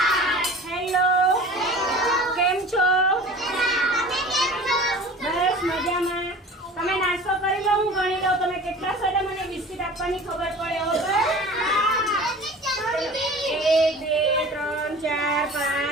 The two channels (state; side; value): normal; both; correlation 0.41